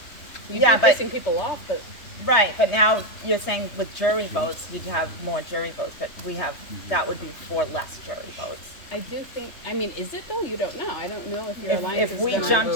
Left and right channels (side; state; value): right; late; 3.3 ms